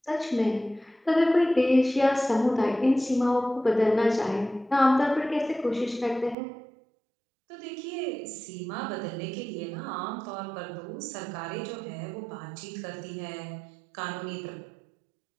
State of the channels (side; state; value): left; drops out; at 6.4 s